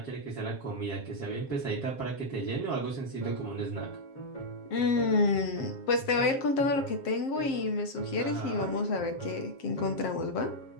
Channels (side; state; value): right; late; 7.5 ms